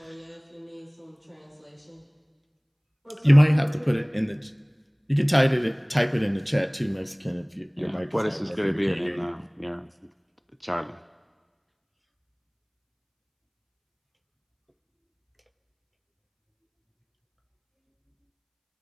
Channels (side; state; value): both; identical; correlation 1.00